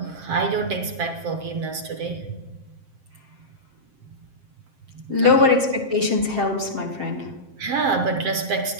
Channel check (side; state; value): left; late; 7.6 ms